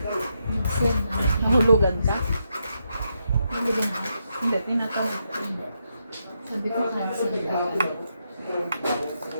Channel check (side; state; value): both; inverted; correlation -0.82